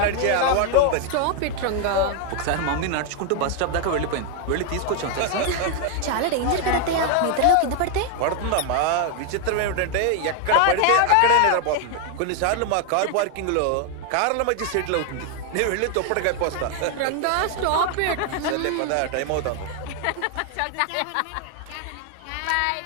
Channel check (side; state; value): both; different; correlation 0.01